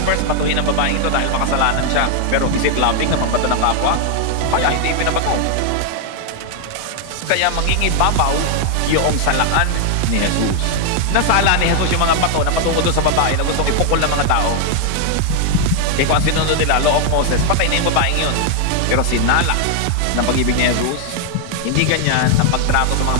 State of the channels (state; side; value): different; both; correlation 0.00